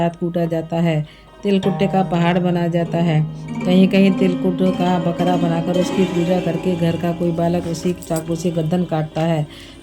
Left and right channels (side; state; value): both; identical; correlation 1.00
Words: कूटा जाता है। तिलकुट्टे का पहाड़ बनाया जाता है। कहीं कहीं तिलकुट का बकरा बनाकर उसकी पूजा करके घर का कोई बालक उसी चाकू से गर्दन काटता है।